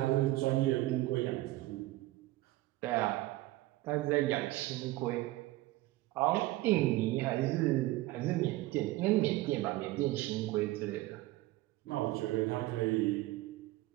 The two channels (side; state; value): left; quieter; 17.9 dB